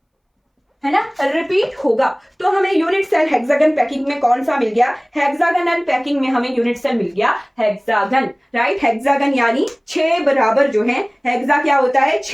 है ना, रिपीट होगा। तो हमें यूनिट सेल हेक्सागन पैकिंग में कौन सा मिल गया? हेक्सागनल पैकिंग में हमें यूनिट सेल मिल गया हेक्सागन। राइट, हेक्सागन यानी 6 बराबर जो है, हेक्सा क्या होता है?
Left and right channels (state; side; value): identical; both; correlation 1.00